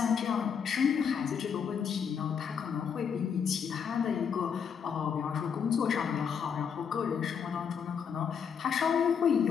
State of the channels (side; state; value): right; quieter; 7.0 dB